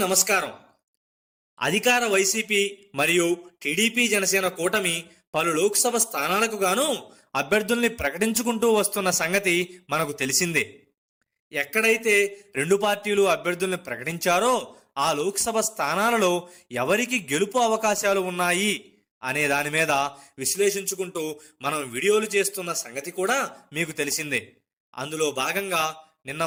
నమస్కారం. అధికార వైసీపీ మరియు టీడీపీ జనసేన కూటమి పలు లోక్సభ స్థానాలకు గాను అభ్యర్థుల్ని ప్రకటించుకుంటూ వస్తున్న సంగతి మనకు తెలిసిందే. ఎక్కడైతే రెండు పార్టీలు అభ్యర్థుల్ని ప్రకటించారో ఆ లోక్సభ స్థానాలలో ఎవరికి గెలుపు అవకాశాలు ఉన్నాయి అనే దాని మీద విశ్లేషించుకుంటూ మనం వీడియోలు చేస్తున్న సంగతి కూడా మీకు తెలిసిందే. అందులో భాగంగా నిన్న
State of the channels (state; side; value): identical; both; correlation 1.00